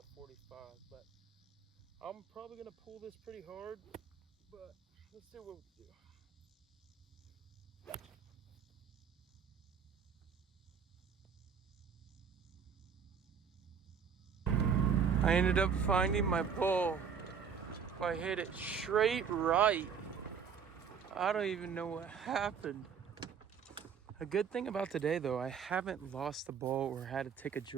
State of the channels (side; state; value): left; quieter; 6.8 dB